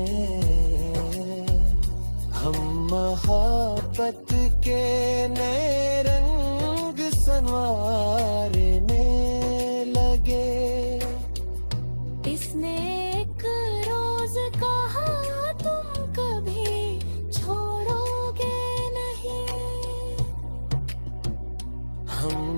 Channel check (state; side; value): inverted; both; correlation -1.00